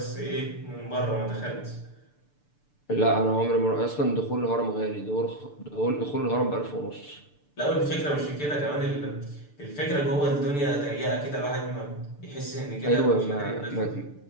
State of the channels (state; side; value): late; right; 6.8 ms